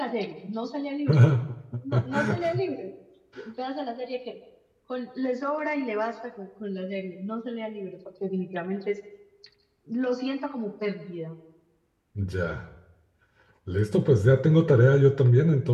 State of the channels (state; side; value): identical; both; correlation 1.00